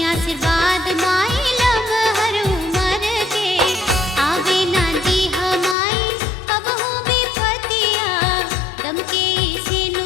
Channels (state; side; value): drops out; right; at 5.8 s